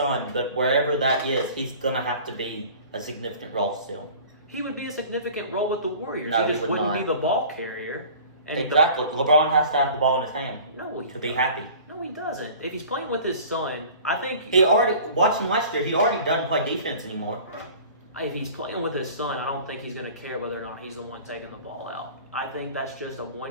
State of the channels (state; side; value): inverted; both; correlation -0.44